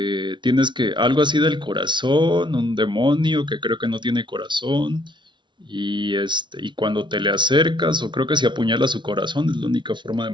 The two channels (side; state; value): left; late; 0.23 ms